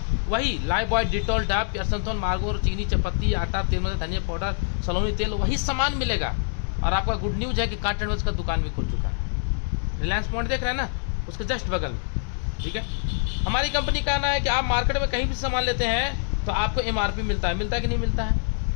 वही लाइफबॉय, डिटॉल, डाब, केरसनथोन, मार्गो, चीनी, चपत्ती, आटा, तेल, धनिया पाउडर, सलोनी तेल, वही सामान मिलेगा। और आपका गुड न्यूज है कि कार्टन का दुकान भी खुल चुका है। रिलायंस पॉइंट देख रहे हैं ना, उसके जस्ट बगल में, ठीक है। हमारी कंपनी का कहना है कि आप मार्केट में कहीं भी सामान लेते हैं तो आपको MRP मिलता है कि नहीं मिलता है,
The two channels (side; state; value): right; silent; digital silence